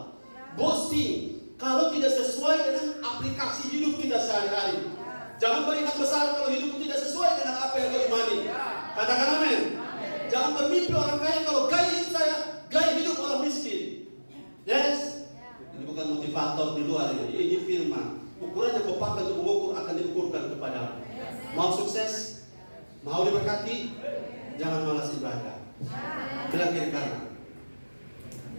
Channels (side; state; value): both; inverted; correlation -1.00